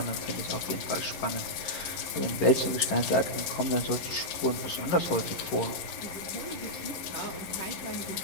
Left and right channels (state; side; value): late; right; 11 ms